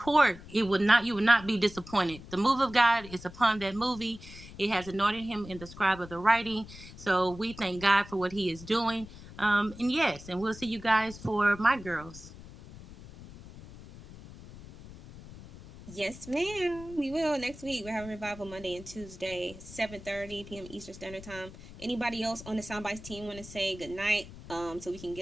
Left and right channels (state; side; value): noise; left; rumble, 16 dB below the sound